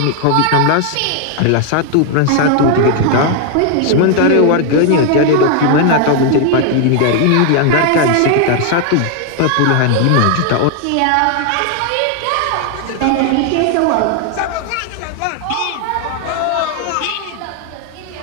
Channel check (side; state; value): both; different; correlation 0.00